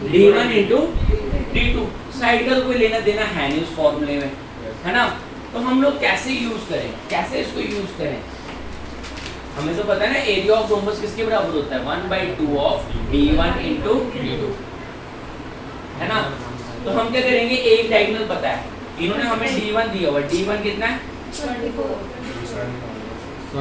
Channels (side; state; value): both; identical; correlation 1.00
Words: D1 into D2। Side का तो कोई लेना देना है नहीं उस फॉर्मूले में, है ना। तो हम लोग कैसे यूज करें, कैसे इसको यूज करें, हमें तो पता है ना एरिया ऑफ रोम्बस किसके बराबर होता है, 1/2 ऑफ D1 इंटू D2, है ना। तो हम क्या करेंगे, एक डायगोनल पता है, इन्होंने हमें D1 दिया हुआ, D1 कितना है 24